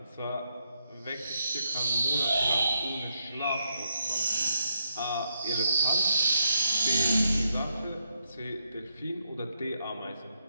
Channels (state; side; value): inverted; both; correlation -0.79